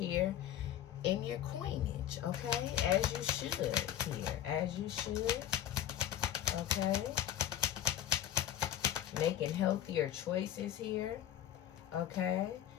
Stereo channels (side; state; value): right; quieter; 11.1 dB